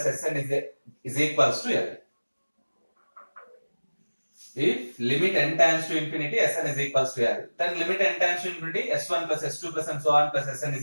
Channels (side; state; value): both; inverted; correlation -1.00